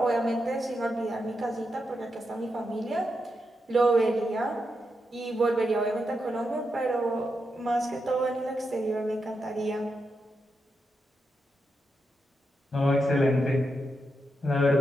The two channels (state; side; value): normal; both; correlation 0.85